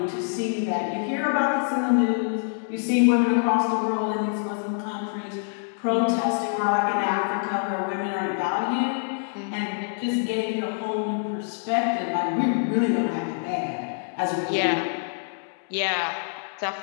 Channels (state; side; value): silent; right; digital silence